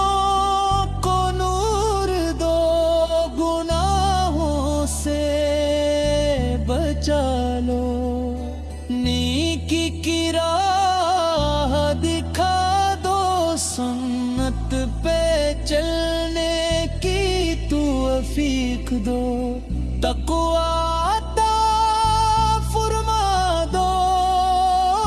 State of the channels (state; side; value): identical; both; correlation 1.00